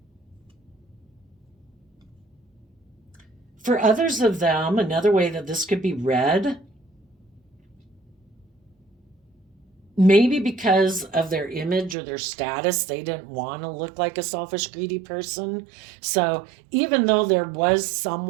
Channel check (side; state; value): left; drops out; at 12.0 s